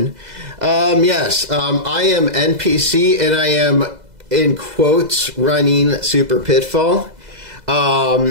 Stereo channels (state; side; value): late; left; 2.0 ms